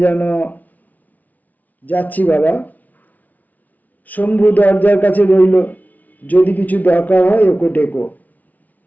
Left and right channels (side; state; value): right; late; 0.076 ms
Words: যেন। যাচ্ছি বাবা। শম্ভু দরজার কাছে রইল, যদি কিছু দরকার হয় ওকে ডেকো।